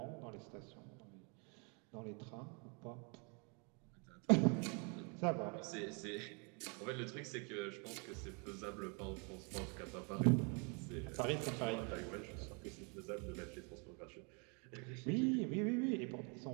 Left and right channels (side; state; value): left; quieter; 34.9 dB